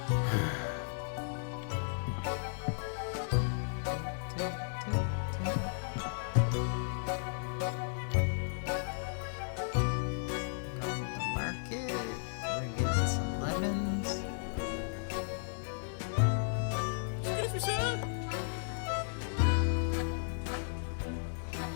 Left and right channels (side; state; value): right; silent; digital silence